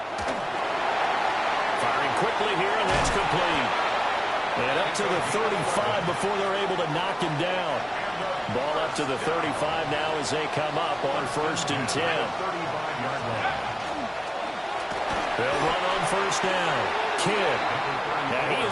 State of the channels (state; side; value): identical; both; correlation 1.00